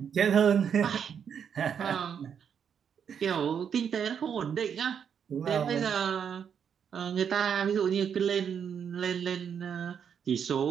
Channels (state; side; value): quieter; left; 7.7 dB